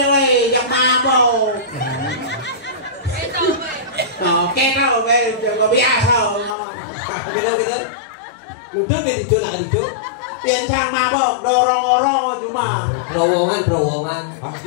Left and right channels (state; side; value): drops out; right; at 6.6 s